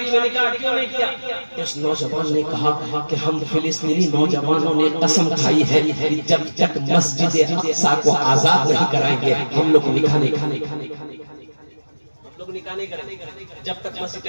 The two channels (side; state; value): both; inverted; correlation -1.00